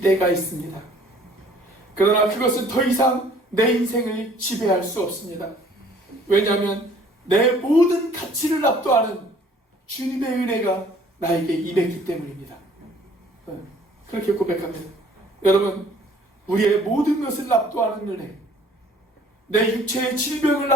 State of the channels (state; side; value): normal; both; correlation 0.56